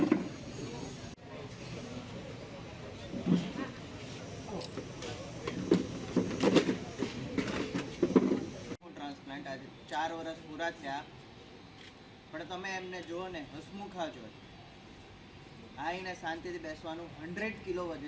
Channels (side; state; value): both; identical; correlation 1.00